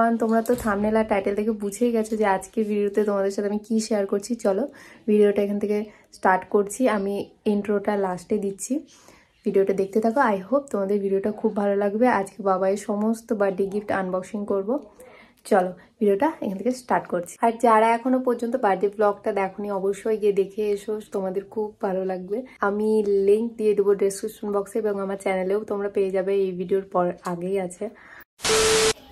তোমরা তো thumbnail আর title থেকে বুঝেই গেছো যে আজকের ভিডিওতে তোমাদের সাথে আমি কি শেয়ার করছি। চলো ভিডিওটা এখান থেকে স্টার্ট করছি। আমি ইন্ট্রোটা লাস্টে দিচ্ছি, ভিডিওটা দেখতে থাকো। আই হোপ তোমাদের ভিডিওটা খুব ভালো লাগবে। আজকে বাবাইয়ের সমস্ত বার্থডে গিফট আনবক্সিং করব। চলো ভিডিওটা এখান থেকে স্টার্ট করছি। আর যারা এখনো পর্যন্ত বার্থডে ব্লগটা দেখোনি অবশ্যই গিয়ে দেখে এসো, তোমাদের খুব ভালো লাগবে। আমি লিঙ্ক দিয়ে দেবো ডেসক্রিপশন বক্সে এবং আমার চ্যানেলেও তোমরা পেয়ে যাবে, এই ভিডিওর পর আগেই আছে।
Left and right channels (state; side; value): identical; both; correlation 1.00